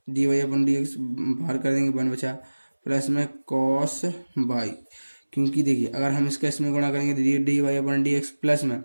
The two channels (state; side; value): inverted; both; correlation -1.00